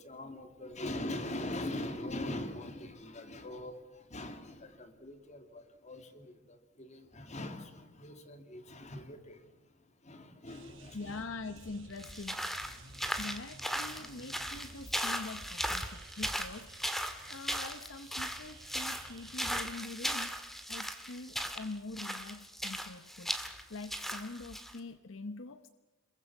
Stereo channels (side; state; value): both; normal; correlation 0.69